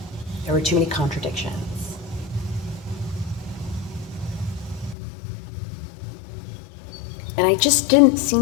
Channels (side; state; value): right; drops out; at 5.0 s